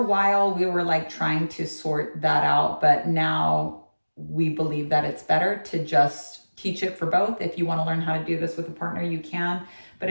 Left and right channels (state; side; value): inverted; both; correlation -1.00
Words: while we were like trying to sort that out, but now we believe that it's better to just teach it for both. If you want to learn how to do this with a partner, you can. But